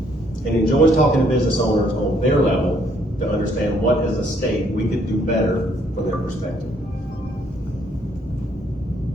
enjoys talking to business owners on their level to understand what as a state we could do better from their perspective.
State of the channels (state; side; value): normal; both; correlation 0.67